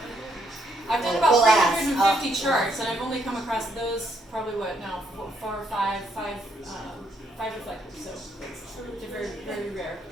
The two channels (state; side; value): normal; both; correlation 0.73